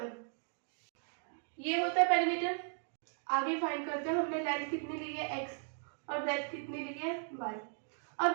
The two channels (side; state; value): left; silent; 53 dB below the other